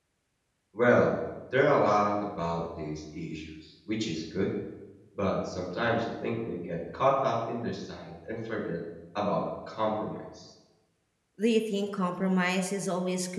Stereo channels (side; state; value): both; identical; correlation 1.00